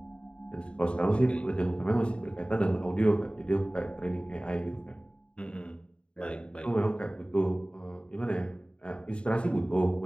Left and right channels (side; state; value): right; late; 0.054 ms